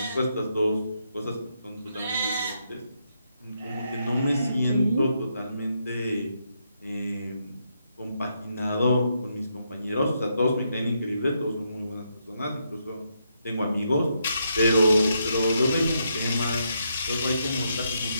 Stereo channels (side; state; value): both; inverted; correlation -0.79